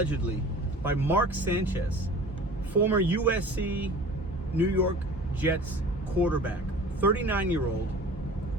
by Mark Sanchez, former USC New York Jets quarterback, 39-year-old,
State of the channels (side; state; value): both; normal; correlation 0.42